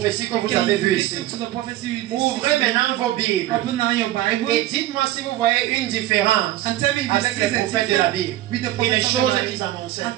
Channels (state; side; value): quieter; left; 14.9 dB